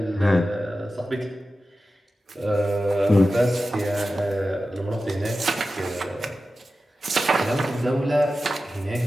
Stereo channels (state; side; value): normal; both; correlation 0.94